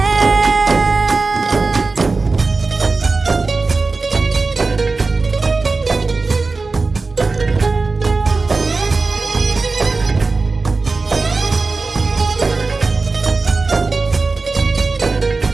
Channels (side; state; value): left; quieter; 3.9 dB